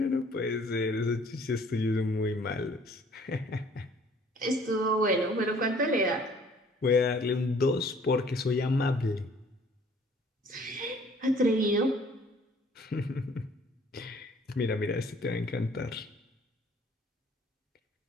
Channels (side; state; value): both; normal; correlation 0.56